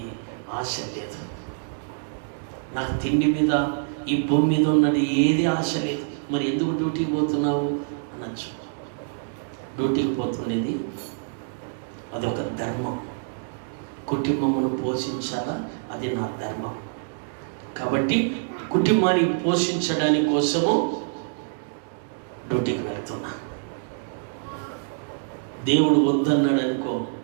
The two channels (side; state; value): left; silent; digital silence